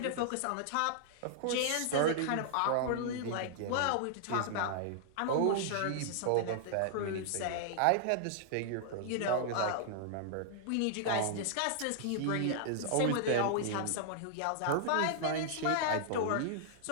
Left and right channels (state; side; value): different; both; correlation -0.01